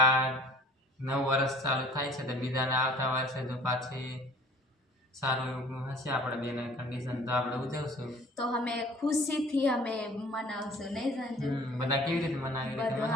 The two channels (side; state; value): both; normal; correlation 0.49